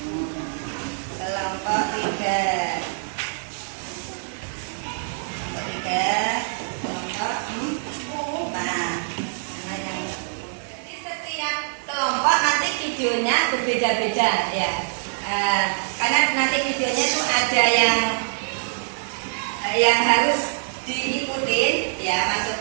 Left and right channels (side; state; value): left; silent; digital silence